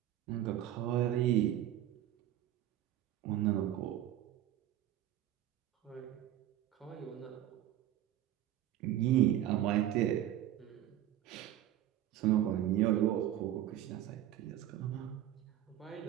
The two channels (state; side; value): quieter; left; 12.5 dB